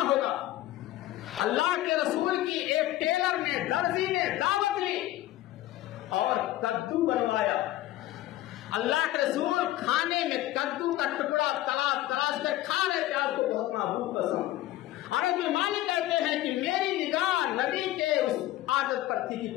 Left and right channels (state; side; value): quieter; right; 15.2 dB